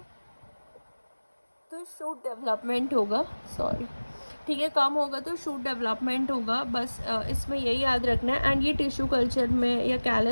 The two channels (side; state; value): both; inverted; correlation -1.00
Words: तो शूट डेवलपमेंट होगा, सॉरी, ठीक है, कम होगा तो शूट डेवलपमेंट होगा। बस इसमें यही याद रखना है। एंड ये टिश्यू कल्चर में या